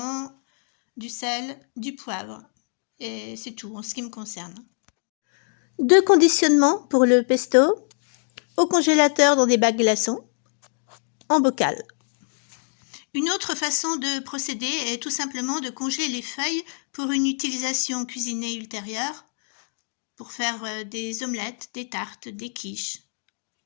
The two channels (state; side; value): silent; right; 62 dB below the other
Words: du sel, du poivre et c'est tout en ce qui me concerne. Deux conditionnements pour le pesto, au congélateur dans des bacs glaçons, en bocal. Une autre façon de procéder est tout simplement de congeler les feuilles pour une utilisation cuisinée ultérieure, pour faire des omelettes, des tartes, des quiches.